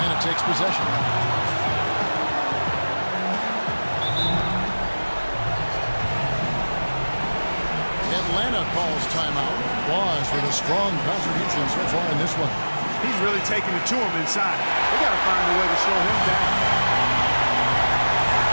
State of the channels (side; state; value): both; inverted; correlation -1.00